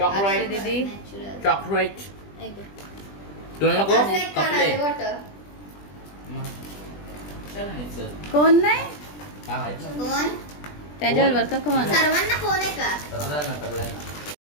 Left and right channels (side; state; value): right; late; 20 ms